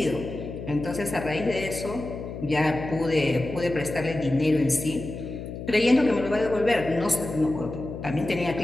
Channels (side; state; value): left; noise; hum, 9 dB below the sound